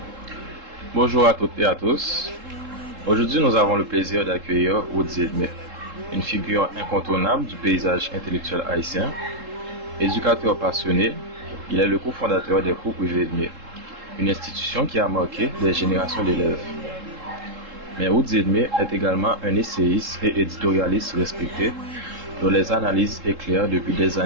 Bonjour à toutes et à tous. Aujourd'hui, nous avons le plaisir d'accueillir Woodzy Edmé, une figure incontournable du paysage intellectuel haïtien. Éducateur passionné, il est le cofondateur des cours privés Edmé, une institution qui a marqué des générations d'élèves. Mais Woodzy Edmé est également un essayiste et éditorialiste respecté, dont les analyses éclairent depuis des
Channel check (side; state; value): left; late; 3.7 ms